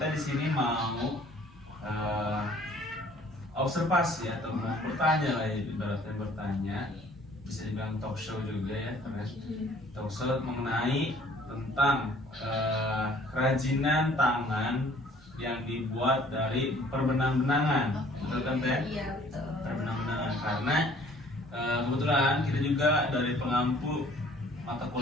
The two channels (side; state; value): both; normal; correlation 0.56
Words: di sini mau observasi atau mau bertanya lah, ibaratnya bertanya, bisa dibilang talk show juga ya, karena talk show mengenai tentang kerajinan tangan yang dibuat dari perbenang-benangan, betul kan Teh? Iya, betul. Perbenang-benangan, karena kebetulan kita juga dari pengampu mata